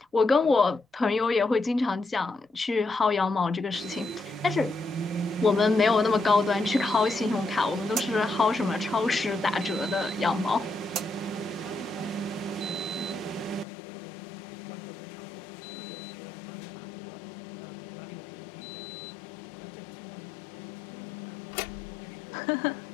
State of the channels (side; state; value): right; drops out; at 13.7 s